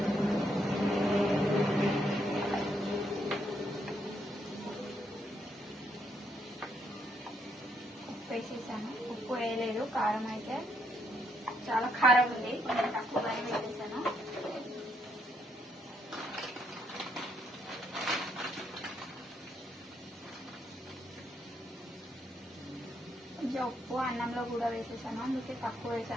ఉప్పు వేసేసాను. ఉప్పు వేయలేదు, కారం అయితే చాలా కారం ఉంది, కొంచెం తక్కువగానే వేసేసాను. కొంచెం ఉప్పు అన్నంలో కూడా వేసేసాను, అందుకే తక్కువ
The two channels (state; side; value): normal; both; correlation 0.75